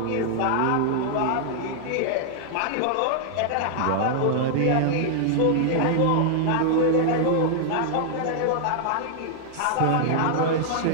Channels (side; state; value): both; different; correlation -0.01